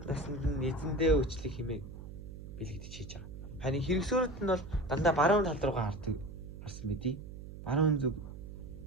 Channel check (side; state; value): right; noise; hum, 12 dB below the sound